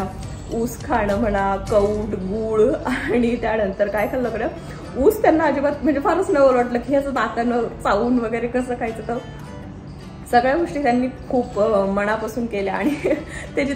ऊस खाणं म्हणा, कौट, गूळ आणि त्यानंतर काय खाल्लं कडं ऊस त्यांना अजिबात म्हणजे फारच नवल वाटलं की ह्याचं नाकानं चावून वगैरे कसं खायचं. तर सगळ्या गोष्टी त्यांनी खूप मनापासून केल्या. आणि ते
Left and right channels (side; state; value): both; identical; correlation 1.00